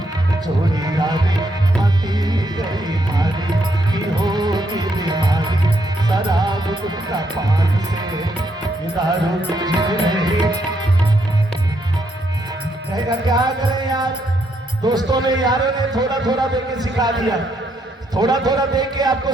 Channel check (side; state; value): both; normal; correlation 0.76